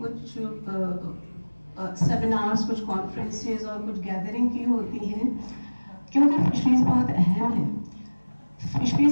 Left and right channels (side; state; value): both; inverted; correlation -1.00